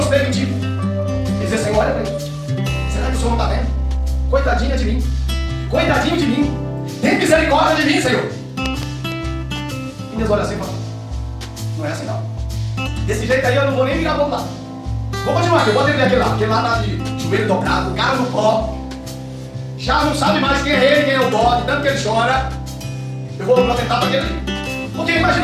E dizer, Senhor, olha para mim. Será que o Senhor não está vendo? Coitadinha de mim. Coitadinho de mim. Tem misericórdia de mim, Senhor. E Deus olha assim e fala, não é assim não. Desse jeito aí eu não vou nem virar para o lado. Vou continuar aqui, eu vou atender aquele lá. Aquele lá tá de joelho dobrado, o cara no pó. Já não sabe mais quem é ele, quem é o bode, tanto que ele chora. Eu vou atentar para aquele ali. Porque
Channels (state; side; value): identical; both; correlation 1.00